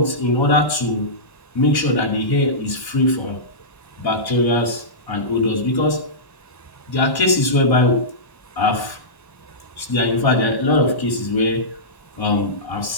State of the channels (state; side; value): late; right; 1.1 ms